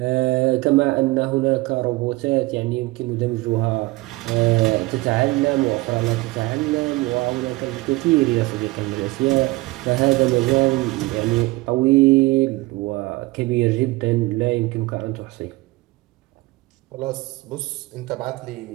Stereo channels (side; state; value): left; quieter; 21.6 dB